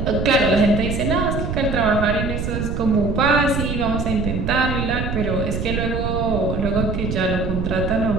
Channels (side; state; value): right; noise; rumble, 3 dB below the sound